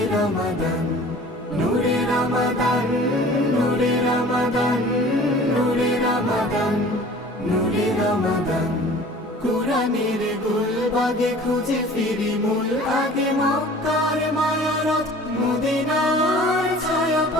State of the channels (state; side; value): normal; both; correlation 0.46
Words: রমাদান, নূরে রমাদান, নূরে রমাদান, নূরে রমাদান, নূরে রমাদান। কুরআনের গুলবাগে খুঁজে ফিরি মূল আগে, মক্কার মায়ারথ মদিনার